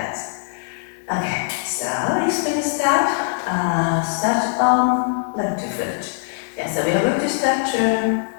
Okay, so explain step. Start on left foot. Yes, so we are going to start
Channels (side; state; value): right; silent; digital silence